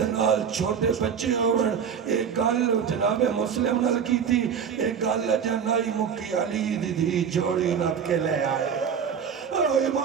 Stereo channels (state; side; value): quieter; left; 7.3 dB